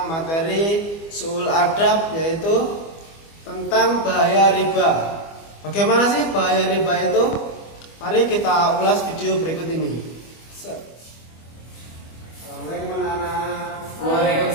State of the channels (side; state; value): right; late; 25 ms